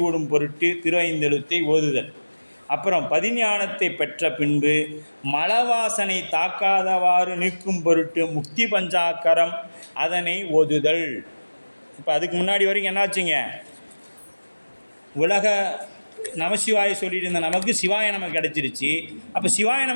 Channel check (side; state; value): both; inverted; correlation -1.00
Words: பொருட்டு திரு ஐந்தெழுத்தை ஓதுதல். அப்புறம் பதிஞானத்தை பெற்ற பின்பு மலவாசனை தாக்காதவாறு நீக்கும் பொருட்டு முக்தி பஞ்சாக்கரம் அதனை ஓதுதல். இப்போ அதுக்கு முன்னாடி வரைக்கும் என்னாச்சுங்க? உலக நமசிவாய சொல்லிட்டு இருந்த நமக்கு சிவாய நமக்கு கிடச்சிருச்சு. அப்போ சிவாய